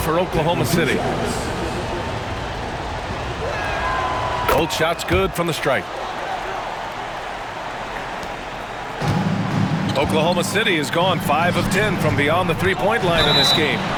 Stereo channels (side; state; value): both; identical; correlation 1.00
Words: Oklahoma City. Both shots good from the stripe. Oklahoma City has gone 5 of 10 from beyond the three-point line in this game.